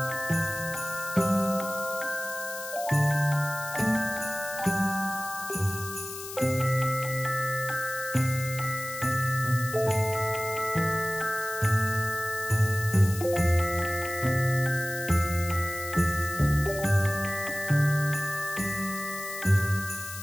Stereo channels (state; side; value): noise; left; hiss, 11 dB below the sound